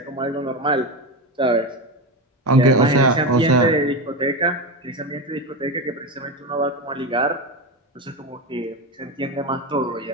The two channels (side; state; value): both; normal; correlation 0.17